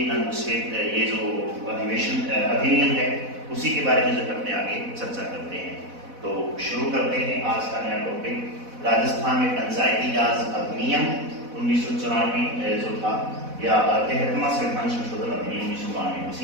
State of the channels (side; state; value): left; late; 4.1 ms